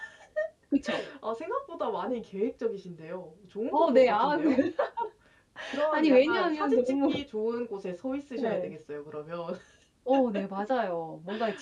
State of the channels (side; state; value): both; identical; correlation 1.00